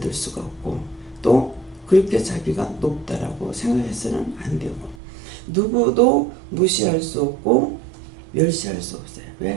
수가 없고, 또 그렇게 자기가 높다라고 생각해서는 안 되고, 누구도 무시할 수 없고 멸시할 수 없어요.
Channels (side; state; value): left; drops out; at 5.0 s